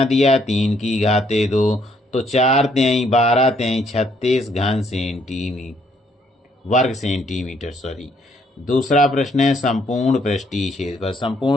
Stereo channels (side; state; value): both; normal; correlation 0.69